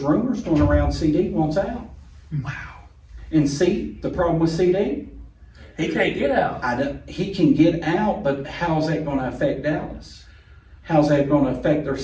rumors going around CD wants out. Wow. And see, the problem with CD, he can't get out. he can get out, but how's that going to affect Dallas? How's that going to affect their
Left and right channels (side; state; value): both; identical; correlation 1.00